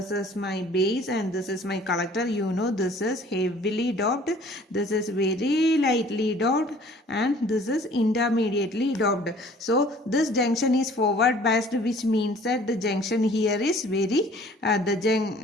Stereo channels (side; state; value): both; normal; correlation 0.52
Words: is my base, and this is my collector. You know, this is heavily doped, this is very lightly doped, and this is intermediately doped. So this junction is forward biased, which means that the junction here is very